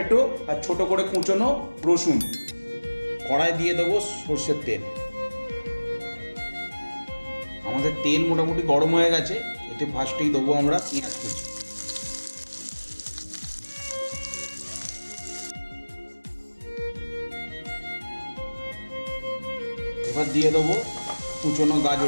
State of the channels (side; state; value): both; inverted; correlation -1.00